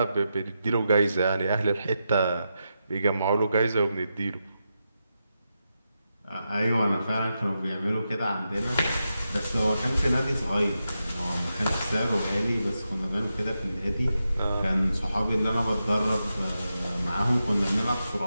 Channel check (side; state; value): both; inverted; correlation -0.87